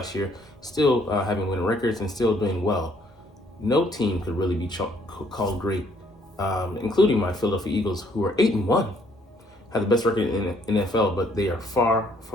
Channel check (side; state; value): both; normal; correlation 0.65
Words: year still having winning records and still doing well. No team could really be called great, including my Philadelphia Eagles, who are 8-1, have the best record in the NFL, but they are far